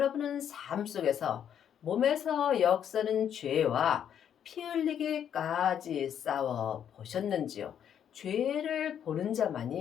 삶 속에서 몸에서 역사는 죄와 피 흘리기까지 싸워 보셨는지요? 죄를 보는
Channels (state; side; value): quieter; right; 9.1 dB